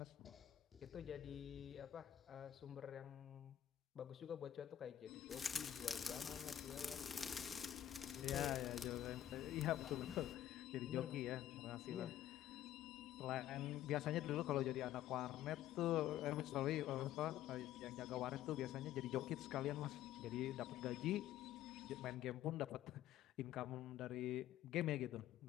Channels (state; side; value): quieter; right; 11.8 dB